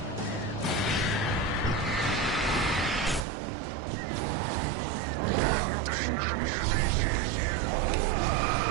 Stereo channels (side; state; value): left; drops out; at 3.2 s